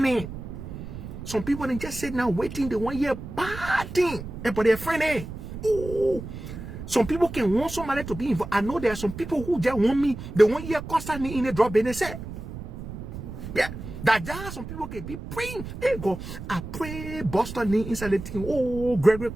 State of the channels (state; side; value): noise; right; rumble, 10 dB below the sound